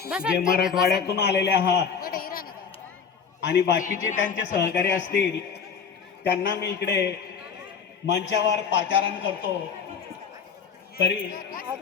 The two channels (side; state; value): right; quieter; 6.3 dB